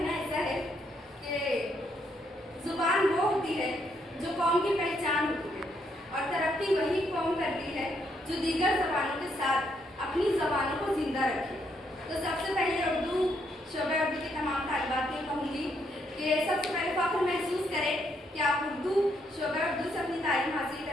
ایسا ہے کہ زبان وہ ہوتی ہے جو قوم کی پہچان ہوتی ہے, اور ترقی وہی قوم کرتی ہے جو دیگر زبانوں کے ساتھ اپنی زبانوں کو زندہ رکھے. تو سب سے پہلے اردو شعبہ اردو کے تمام طالبات کو کہوں گی کہ سب سے پہلے فخر محسوس کریں کہ آپ اردو شعبہ اردو سے اپنی تعلیم حاصل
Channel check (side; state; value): both; normal; correlation 0.74